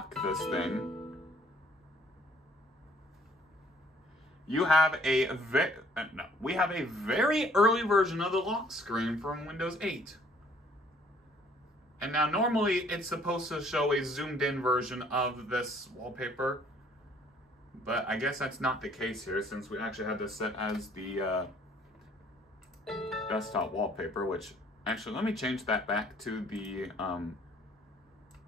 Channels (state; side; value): normal; both; correlation 0.60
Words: this thing, you have we have a very early version of the lock screen from Windows 8. And now normally it's supposed to show a zoomed in version of this wallpaper, but I guess that's not the case here since we actually had this set as the desktop wallpaper, which actually, let me change that back to the,